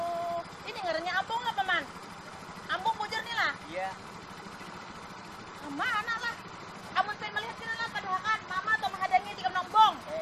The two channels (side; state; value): both; identical; correlation 1.00